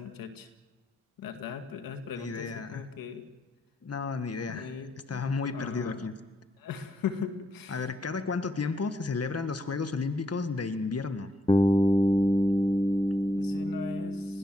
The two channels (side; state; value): both; normal; correlation 0.77